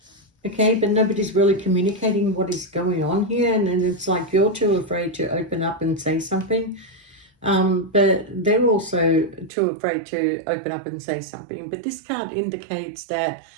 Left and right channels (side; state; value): left; drops out; at 9.5 s